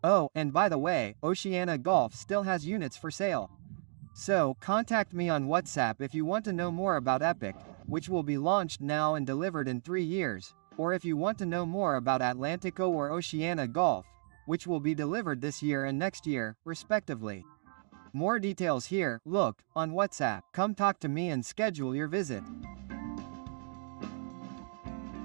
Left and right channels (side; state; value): left; silent; digital silence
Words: Oh, and by the way, Oceana Golf still has units for sale. So, contact me on WhatsApp if you want to know more about Epic, which will be launched now and delivered in 3 years, or if you want to know more about Atlantico or Oceana Golf, which will be delivered this year and next year, respectively. More details here. Look, on WhatsApp. Come talk to me and schedule your visit.